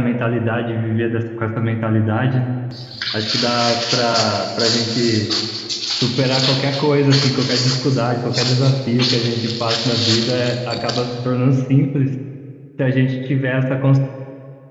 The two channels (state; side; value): identical; both; correlation 1.00